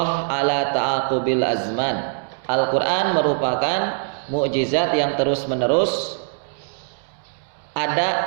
ala ta'aqubil azman. Al-Quran merupakan mukjizat yang terus-menerus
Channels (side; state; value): left; silent; digital silence